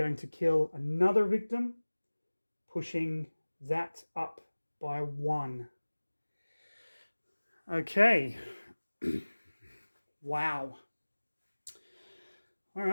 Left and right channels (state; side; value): inverted; both; correlation -1.00